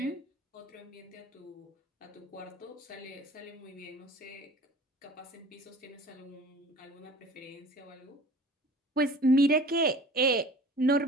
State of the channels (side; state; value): both; normal; correlation 0.44